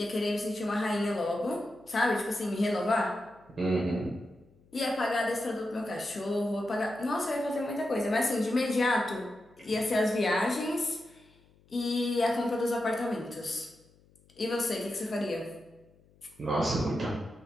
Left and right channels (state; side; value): noise; left; hum, 30 dB below the sound